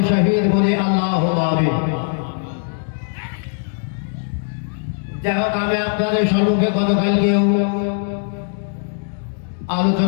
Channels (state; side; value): silent; right; digital silence